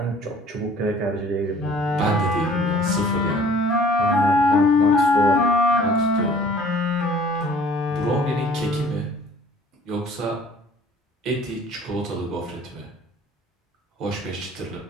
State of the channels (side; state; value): both; normal; correlation 0.52